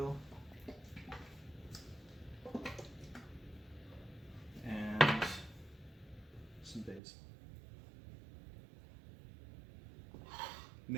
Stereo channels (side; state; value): left; drops out; at 7.0 s